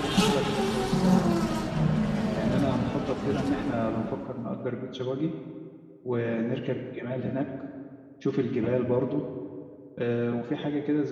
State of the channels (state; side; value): identical; both; correlation 1.00